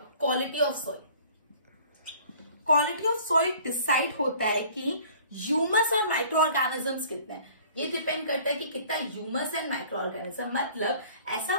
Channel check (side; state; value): both; inverted; correlation -0.51